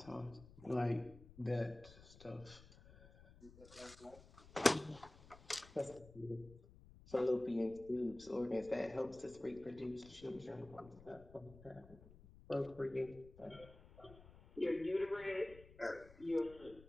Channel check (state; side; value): noise; left; rumble, 20 dB below the sound